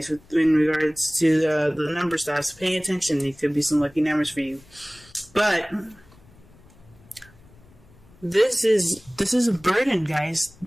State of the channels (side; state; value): left; noise; rumble, 26 dB below the sound